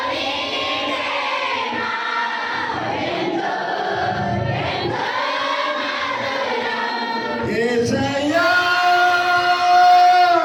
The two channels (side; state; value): both; identical; correlation 1.00